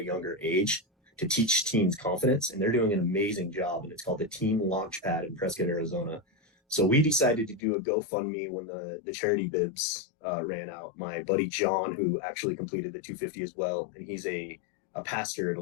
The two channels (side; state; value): right; drops out; at 7.6 s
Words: younger age, to teach teens confidence. And they're doing an amazing job. And it's called the Teen Launchpad in Prescott, Arizona. So we decided to do a GoFundMe when the charity bibs ran out. My buddy John, who actually completed the 250 as well, and he's a pastor at a